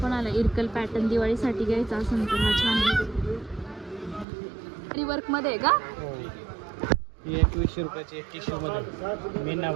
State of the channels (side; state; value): left; drops out; at 4.2 s